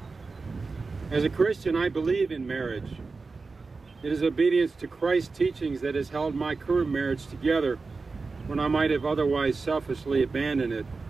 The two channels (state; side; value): quieter; left; 4.2 dB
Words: As a Christian, I believe in marriage. It is obedience to Christ's teachings that has held my current marriage together when I might have otherwise selfishly abandoned it,